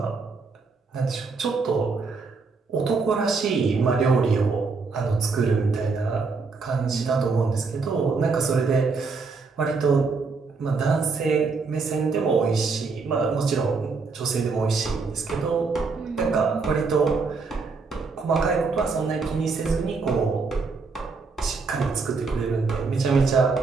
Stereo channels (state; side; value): quieter; left; 4.5 dB